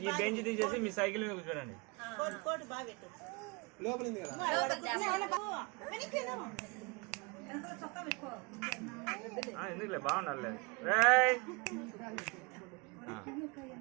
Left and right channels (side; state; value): left; quieter; 29.0 dB